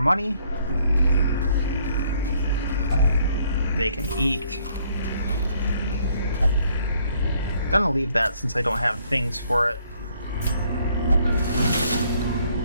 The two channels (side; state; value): both; inverted; correlation -0.66